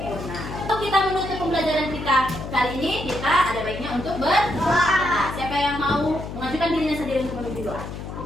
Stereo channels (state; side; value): noise; left; hum, 9 dB below the sound